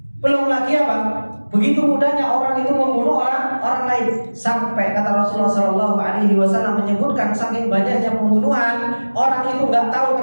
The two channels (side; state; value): both; inverted; correlation -1.00